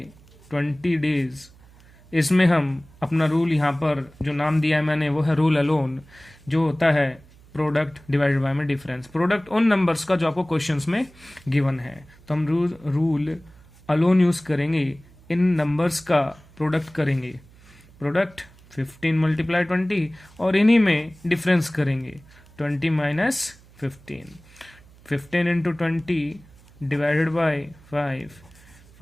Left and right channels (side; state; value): right; noise; hum, 25 dB below the sound